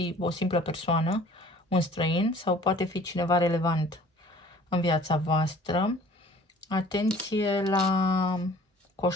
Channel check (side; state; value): both; normal; correlation 0.51